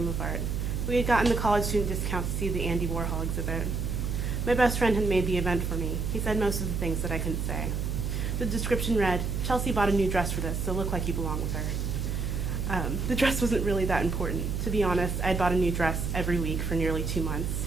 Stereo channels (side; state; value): right; noise; hum, 1 dB below the sound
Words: of Art. We had gotten the college student discount to see the Andy Warhol exhibit. My best friend had made the event for me. He said most of the things that I couldn't say. The description read, "Chelsea bought a new dress for this, so look like you belong with her." The dress wasn't really that important. To be honest, I'd bought a new dress every week for nearly 2